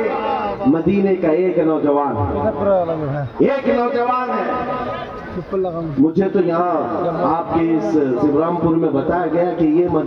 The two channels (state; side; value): identical; both; correlation 1.00